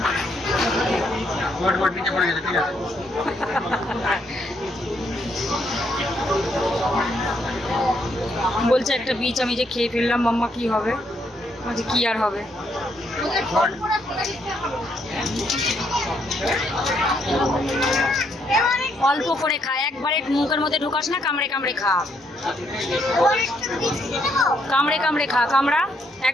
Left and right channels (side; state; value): both; normal; correlation 0.74